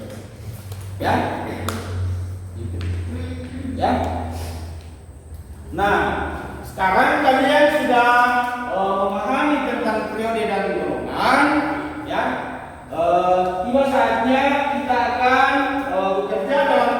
Ya, gitu. Ya. Nah, sekarang kalian sudah memahami tentang periode dan golongan. Ya, tiba saatnya kita akan bekerja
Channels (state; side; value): identical; both; correlation 1.00